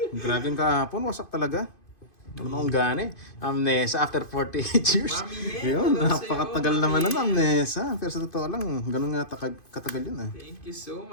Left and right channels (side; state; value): right; late; 2.5 ms